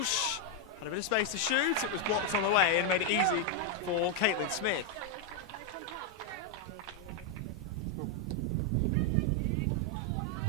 had a bit of space to shoot. It was blocked on the way and made it easy for Caitlin Smith.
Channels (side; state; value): both; normal; correlation 0.01